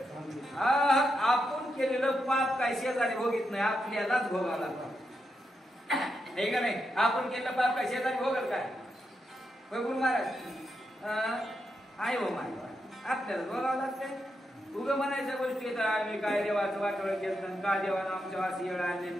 आपण केलेलं पाप काय शेजारी भोगीत नाही, आपल्यालाच भोगावं लागतं. हे का नाही? आपण केलेलं पाप काय शेजारी भोगल काय? गुरु महाराज आहे हो माझ्या, आपल्याला भोगावं लागतंय. उगं म्हणायच्या गोष्टी येतात आम्ही काय देवाचं वाटोळं केलं, का देवानं आमच्या अशी येळ आणली,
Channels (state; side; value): normal; both; correlation 0.84